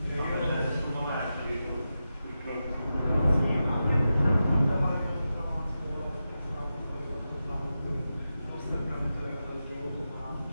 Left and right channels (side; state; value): both; inverted; correlation -0.91